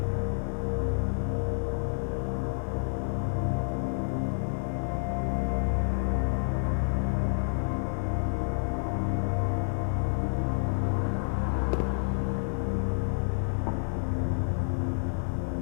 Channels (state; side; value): silent; right; 57 dB below the other